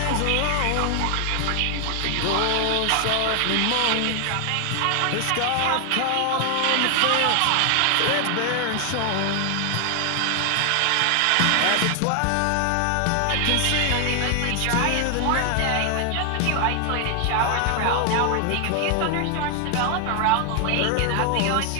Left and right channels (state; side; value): different; both; correlation 0.00